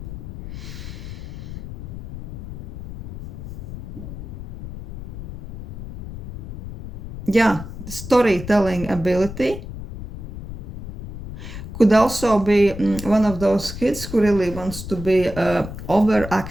Yeah, the storytelling ability. Could also be one of those kids who really wants to be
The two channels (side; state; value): left; noise; rumble, 10 dB below the sound